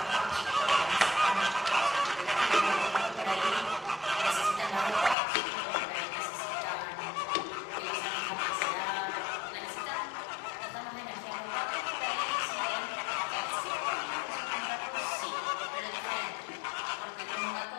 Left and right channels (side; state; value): right; drops out; at 5.2 s